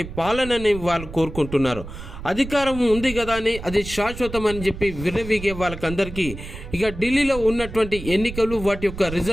పాలనని వాళ్ళు కోరుకుంటున్నారు. అధికారం ఉంది కదా అని అది శాశ్వతం అని చెప్పి విర్రవీగే వాళ్ళకందరికీ ఇక ఢిల్లీలో ఉన్నటువంటి ఎన్నికలు వాటి యొక్క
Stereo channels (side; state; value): right; noise; rumble, 11 dB below the sound